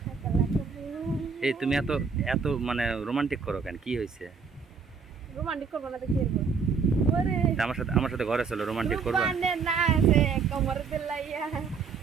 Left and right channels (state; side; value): quieter; left; 5.5 dB